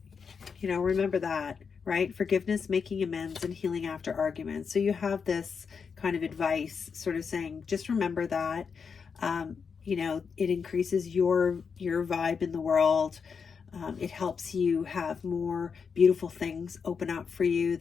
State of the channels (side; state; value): right; quieter; 5.9 dB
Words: that, right? Forgiveness, making amends, and healing after arguments. So you have this kind of advice sort of saying, just remember that. You know, it increases your vibe in the world. It helps you have more beautiful things open up for you